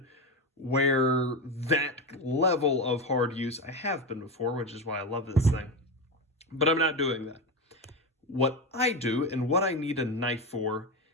where that level of hard use, I have been before, which is why I love this thing. But I'm not doing that. What I do and what I need a knife for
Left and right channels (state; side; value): normal; both; correlation 0.17